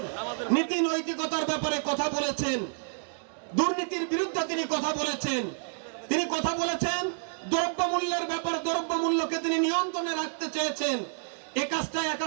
নীতি নৈতিকতার ব্যাপারে কথা বলেছেন, দুর্নীতির বিরুদ্ধে তিনি কথা বলেছেন। তিনি কথা বলেছেন দ্রব্যমূল্যের ব্যাপারে, দ্রব্যমূল্যকে তিনি নিয়ন্ত্রণে রাখতে চেয়েছেন। এই কাজটা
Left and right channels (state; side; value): silent; left; digital silence